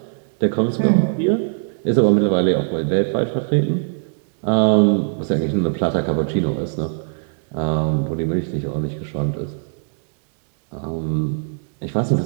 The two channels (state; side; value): silent; left; digital silence